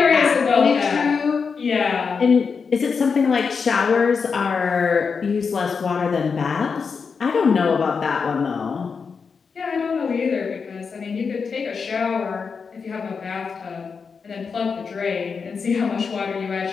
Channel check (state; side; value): quieter; right; 5.5 dB